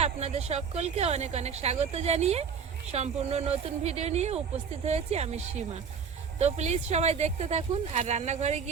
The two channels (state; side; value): quieter; left; 6.4 dB